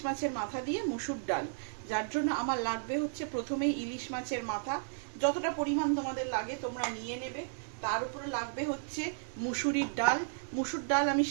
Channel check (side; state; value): left; silent; 55 dB below the other